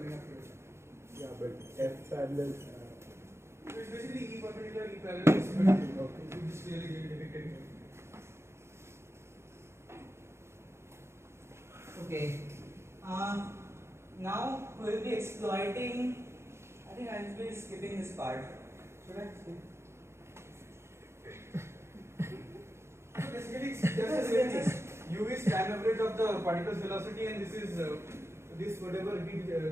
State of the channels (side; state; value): left; late; 0.13 ms